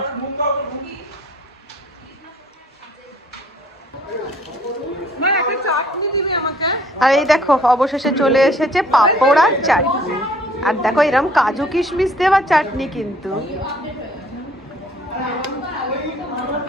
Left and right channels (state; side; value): normal; both; correlation 0.58